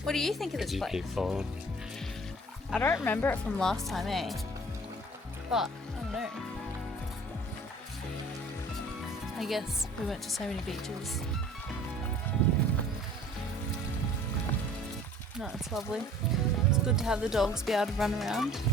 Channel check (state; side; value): normal; both; correlation 0.49